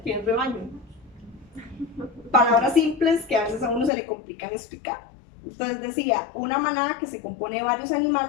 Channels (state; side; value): drops out; right; at 3.9 s